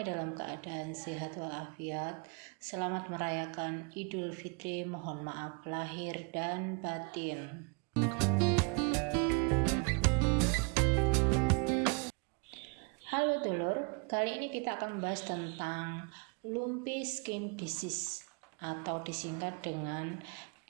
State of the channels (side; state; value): left; quieter; 34.2 dB